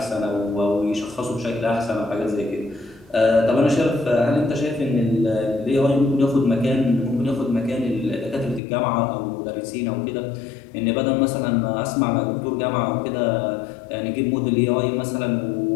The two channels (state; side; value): drops out; right; at 8.6 s